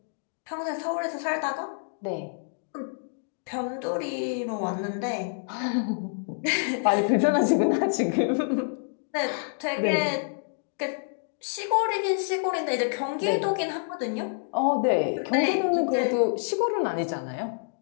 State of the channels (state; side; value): silent; right; digital silence